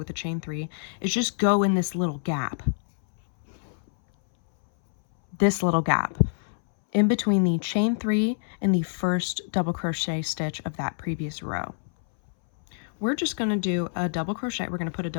a chain 3 is just go in this little gap. This little gap in between the chain 3 and the first double crochet stitch of that previous row. We're just going to do a double crochet. We're going to put a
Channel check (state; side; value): silent; right; 61 dB below the other